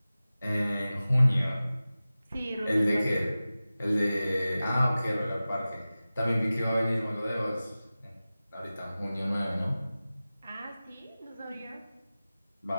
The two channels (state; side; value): inverted; both; correlation -0.96